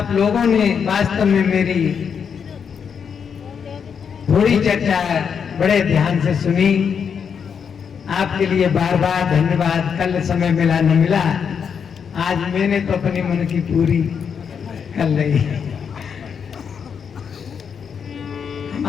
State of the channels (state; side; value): quieter; right; 6.9 dB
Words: लोगों ने वास्तव में मेरी थोड़ी चर्चा बड़े ध्यान से सुनी। आपके लिए बार बार धन्यवाद। कल समय मिला न मिला, आज मैंने तो अपनी मन की पूरी कर ली।